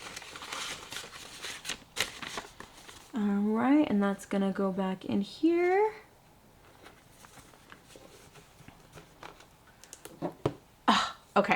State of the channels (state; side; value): identical; both; correlation 1.00